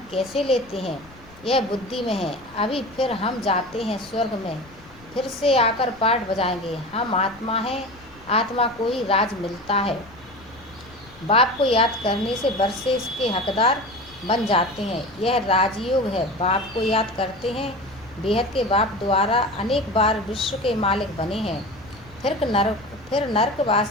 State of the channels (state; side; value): noise; left; rumble, 24 dB below the sound